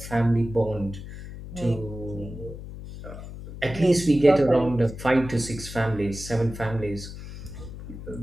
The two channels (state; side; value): noise; left; hum, 12 dB below the sound